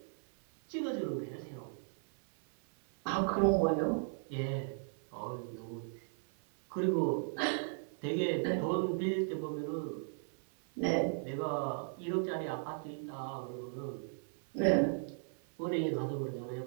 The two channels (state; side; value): silent; left; 54 dB below the other